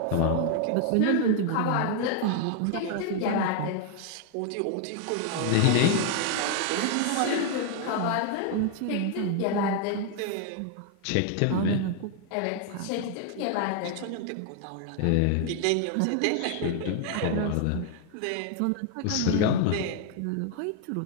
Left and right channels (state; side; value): different; both; correlation 0.00